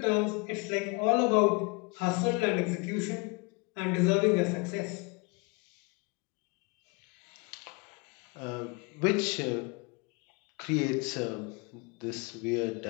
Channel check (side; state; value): right; quieter; 28.9 dB